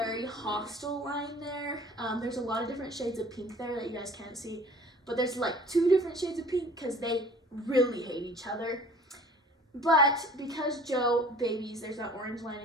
hostile line there. There's a lot of different shades of pink there that you guys can't see, but there's like 2 different shades of pink because they really hate each other. But because Joe babies, there's that orange line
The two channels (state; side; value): normal; both; correlation 0.48